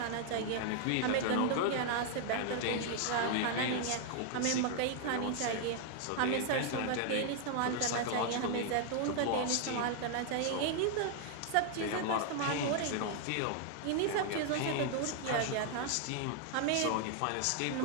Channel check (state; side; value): different; both; correlation 0.00